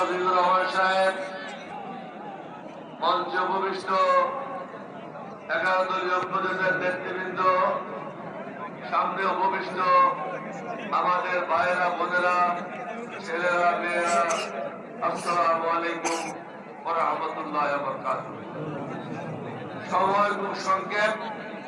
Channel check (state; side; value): identical; both; correlation 1.00